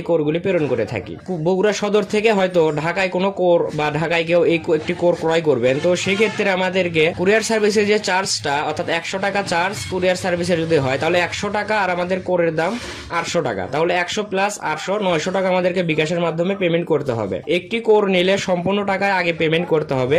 কোরগুলি প্রেরণ করে থাকি। বগুড়া সদর থেকে হয়তো ঢাকায় কোনো কোর বা ঢাকায় কেউ এই একটি কোর ক্রয় করবেন, তো সেক্ষেত্রে আমাদেরকে কুরিয়ার সার্ভিসের যে চার্জটা, অর্থাৎ 100 টাকা চার্জ কুরিয়ার সার্ভিসে যদি হয় তাহলে 100 টাকা, আর আমাদের কোরের দাম 800 টাকা, তাহলে 100 প্লাস 800 900 টাকা আমাদেরকে বিকাশের মাধ্যমে পেমেন্ট করতে হবে। একটি কোর নিলে সম্পূর্ণ টাকা আগে পেমেন্ট করতে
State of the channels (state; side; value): identical; both; correlation 1.00